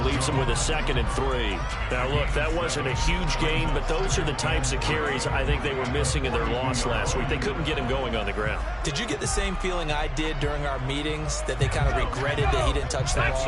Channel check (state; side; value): identical; both; correlation 1.00